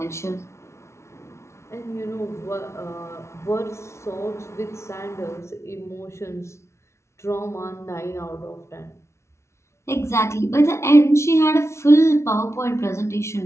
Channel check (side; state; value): right; late; 0.13 ms